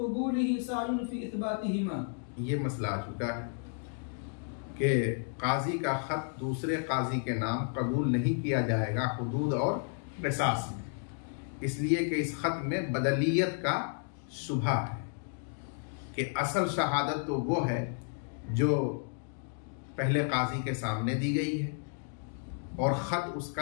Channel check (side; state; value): right; silent; 56 dB below the other